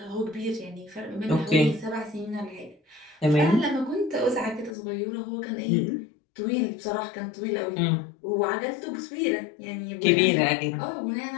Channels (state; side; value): drops out; right; at 4.8 s